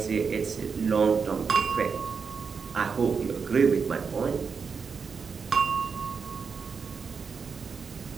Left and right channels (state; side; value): quieter; left; 5.7 dB